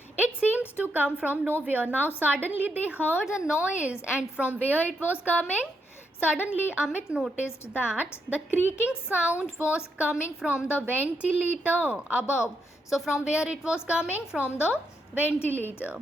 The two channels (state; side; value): normal; both; correlation 0.80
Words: It seemed to come from nowhere. Now suddenly they heard a noise, and from where it was coming? Suddenly Amit noticed that the creaking sound was coming from the ventilator above. So from where it was coming? From the